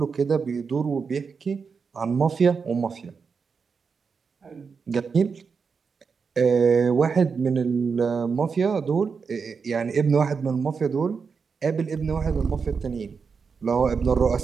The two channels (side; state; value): left; quieter; 5.5 dB